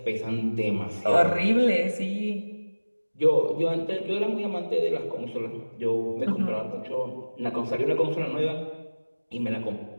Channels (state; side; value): inverted; both; correlation -1.00